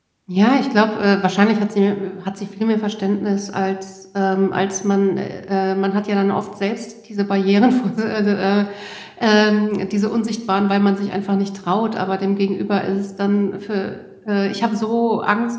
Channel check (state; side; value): identical; both; correlation 1.00